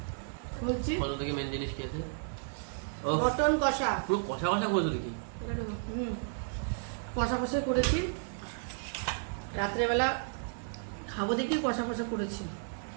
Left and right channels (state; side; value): silent; left; 56 dB below the other